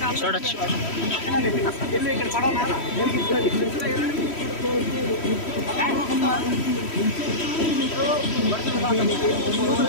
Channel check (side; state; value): right; late; 3.1 ms